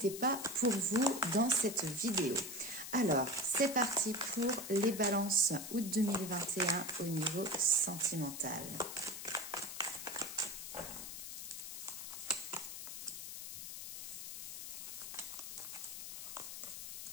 pas pour vous dans cette vidéo. Alors, c'est parti pour les balances août 2021 au niveau sentimental.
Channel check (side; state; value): left; noise; hiss, 8 dB below the sound